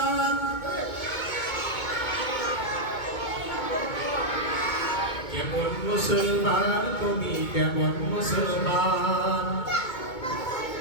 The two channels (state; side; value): late; right; 2.2 ms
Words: কেমন মুসলমান তুমি কেমন মুসলমান